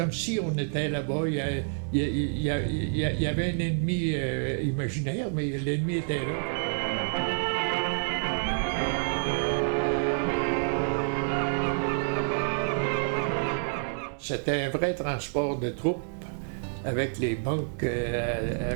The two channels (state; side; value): silent; left; 58 dB below the other